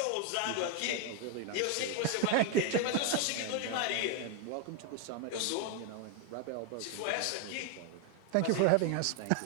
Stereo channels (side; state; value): both; different; correlation 0.01